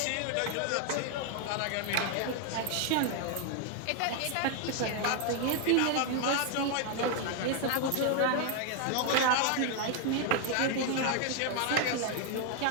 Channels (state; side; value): different; both; correlation 0.00